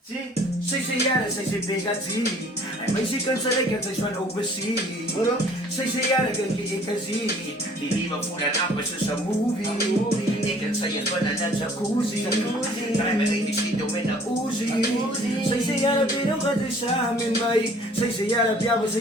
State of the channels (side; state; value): both; normal; correlation 0.55